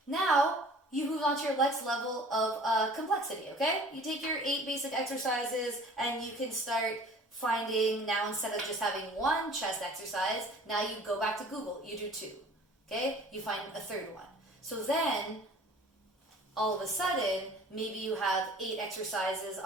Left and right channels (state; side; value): normal; both; correlation 0.48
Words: now you move on to your next level of complexity, okay? You take your 8 basic exercises and you can start finding, now instead of just having one chest exercise, now you go back to Google, you do 2, okay? You find a third one. So then, all of a sudden, maybe you have 8 exercises